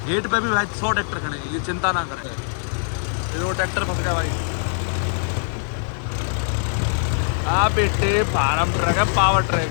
गेट पे भी भाई 100 ट्रैक्टर खड़े हैं, ये चिंता ना करें। ये वो ट्रैक्टर फंस गया भाई। बेटे फार्म ट्रक है, पावर ट्रक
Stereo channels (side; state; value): right; silent; digital silence